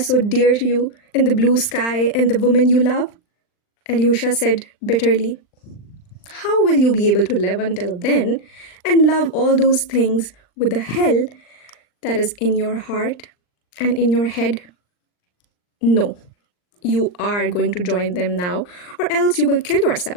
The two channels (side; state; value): right; late; 39 ms